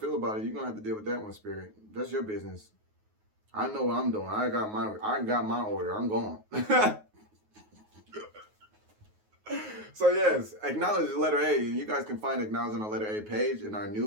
about it. You're going to have to deal with that one, Spirit. That's your business. I know what I'm doing. I got my order. I'm going. So yes, acknowledge the letter A. You guys can find acknowledge on the letter A page in our new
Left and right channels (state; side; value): late; left; 9.4 ms